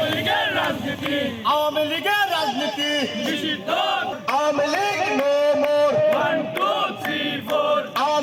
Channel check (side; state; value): both; identical; correlation 1.00